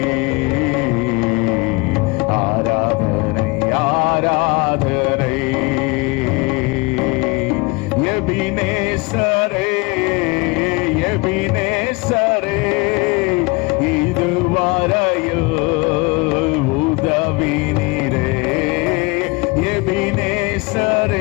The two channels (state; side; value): quieter; right; 26.9 dB